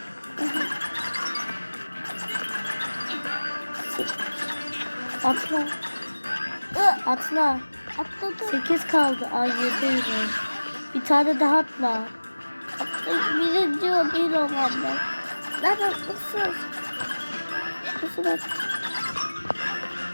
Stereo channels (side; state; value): both; inverted; correlation -1.00